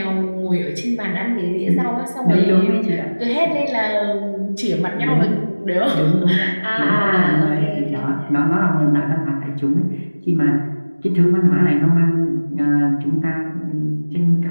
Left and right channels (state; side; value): inverted; both; correlation -1.00